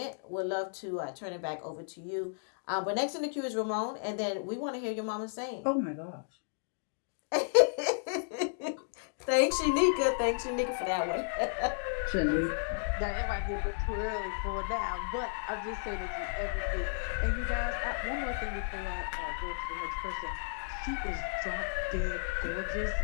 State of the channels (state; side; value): silent; right; digital silence